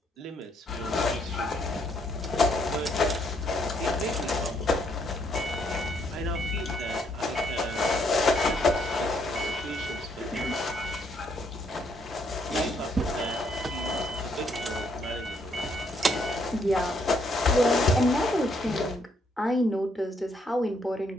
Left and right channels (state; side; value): normal; both; correlation 0.72